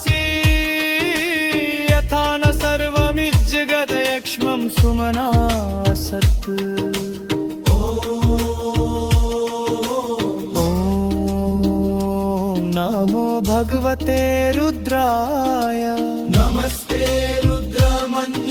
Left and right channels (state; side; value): identical; both; correlation 1.00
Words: यथा न सर्वमिज्जगदयक्ष्मं सुमना सत् ॐ नमो भगवते रुद्राय नमस्ते